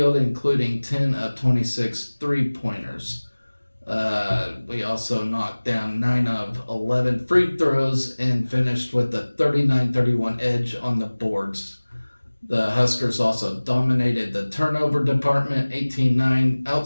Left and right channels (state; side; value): inverted; both; correlation -1.00